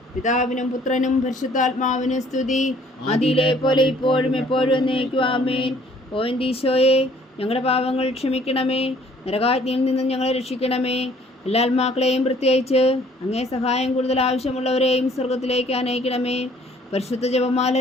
പിതാവിനും പുത്രനും പരിശുദ്ധാത്മാവിനും സ്തുതി, ആദിയിലെ പോലെ ഇപ്പോഴും എപ്പോഴും എന്നേക്കും. ആമേൻ. ഓ എൻ്റെ ഈശോയെ, ഞങ്ങളുടെ പാപങ്ങൾ ക്ഷമിക്കണമേ, നരകാഗ്നിയിൽ നിന്നും ഞങ്ങളെ രക്ഷിക്കണമേ. എല്ലാ ആത്മാക്കളെയും പ്രത്യേകിച്ച് അങ്ങേ സഹായം കൂടുതൽ ആവശ്യമുള്ളവരെയും സ്വർഗത്തിലേക്ക് അനയിക്കണമേ. പരിശുദ്ധ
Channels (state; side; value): normal; both; correlation 0.58